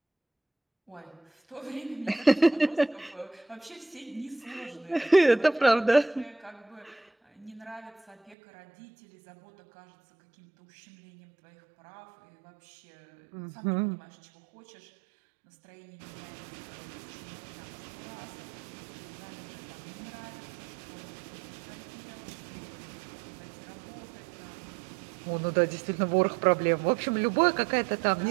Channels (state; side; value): drops out; left; at 8.3 s